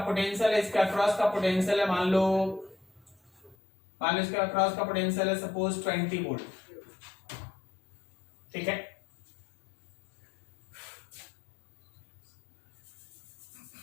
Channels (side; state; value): right; drops out; at 3.6 s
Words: है, इसके अक्रॉस का पोटेंशियल है मान लो इसके अक्रॉस का पोटेंशियल है सपोज 20 वोल्ट, ठीक है।